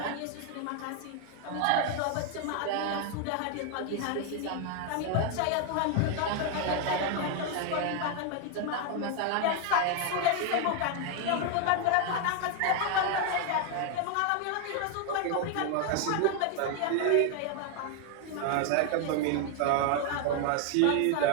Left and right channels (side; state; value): both; different; correlation 0.00